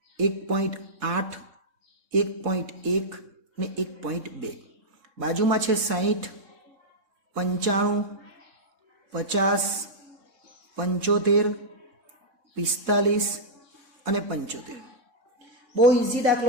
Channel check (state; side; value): late; left; 3.6 ms